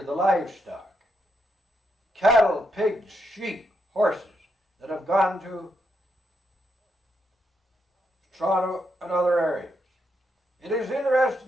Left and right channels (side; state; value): both; normal; correlation 0.80